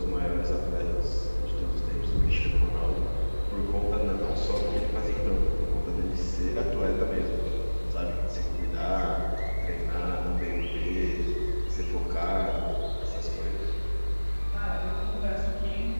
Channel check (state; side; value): inverted; both; correlation -1.00